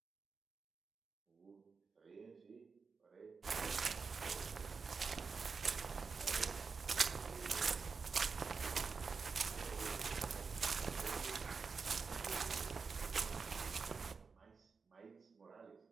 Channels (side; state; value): left; quieter; 5.0 dB